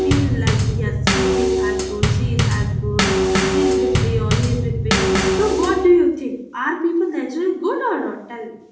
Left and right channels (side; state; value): both; identical; correlation 1.00